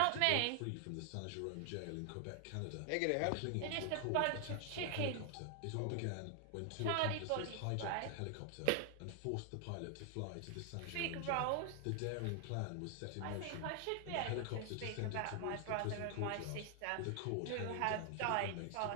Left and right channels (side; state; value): both; different; correlation 0.00